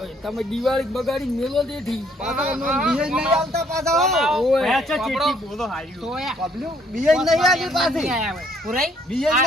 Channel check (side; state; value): both; normal; correlation 0.65